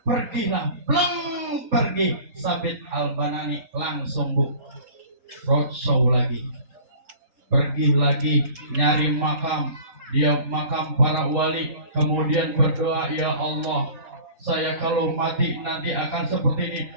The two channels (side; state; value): left; late; 3.9 ms